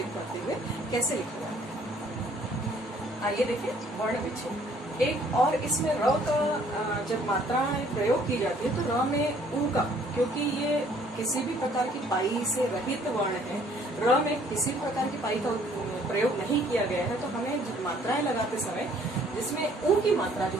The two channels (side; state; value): both; normal; correlation 0.60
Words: करते हुए कैसे लिखा जाता है। आइए देखें वर्ण विच्छेद। एक और इसमें र का जब मात्राएं प्रयोग की जाती है तो र में ऊ का, क्योंकि ये किसी भी प्रकार की पाई से रहित वर्ण है, र में किसी प्रकार की पाई का प्रयोग नहीं किया गया है, तो हमें मात्राएं लगाते समय जिसमें ऊ की मात्रा जो